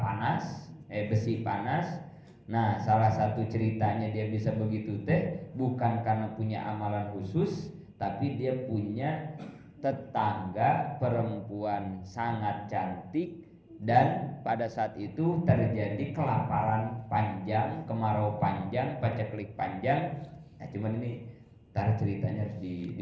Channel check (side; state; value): both; identical; correlation 1.00